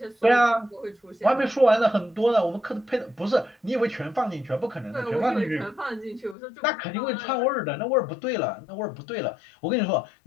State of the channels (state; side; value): drops out; right; at 6.4 s